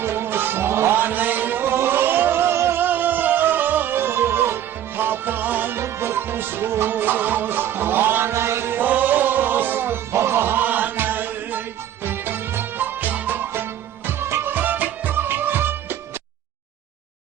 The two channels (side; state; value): left; quieter; 10.9 dB